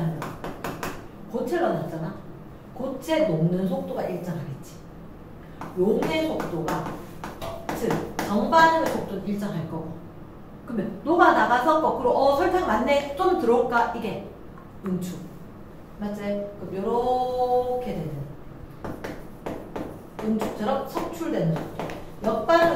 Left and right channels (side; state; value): both; identical; correlation 1.00